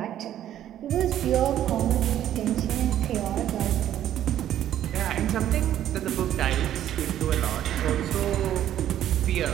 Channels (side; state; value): left; quieter; 11.5 dB